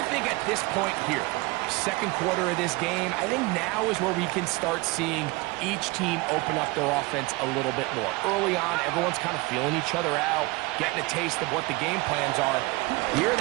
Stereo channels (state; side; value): quieter; left; 24.2 dB